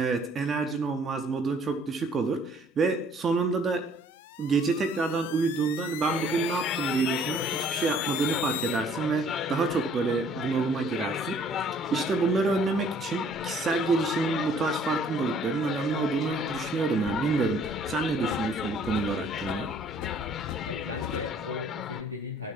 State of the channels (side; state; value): both; normal; correlation 0.58